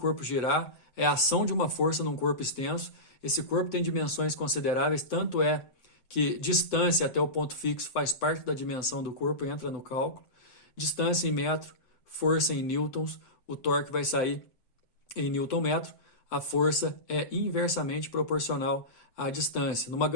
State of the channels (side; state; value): right; late; 7.7 ms